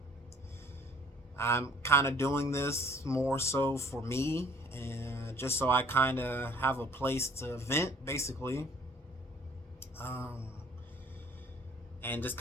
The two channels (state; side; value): normal; both; correlation 0.55